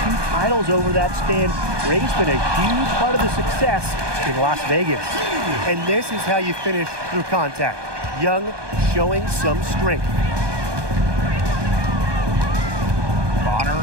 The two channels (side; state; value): left; late; 1.2 ms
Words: titles over that span. Gray's been a huge part of the success in Las Vegas. And this is how you finish through contact. Young showing some strength.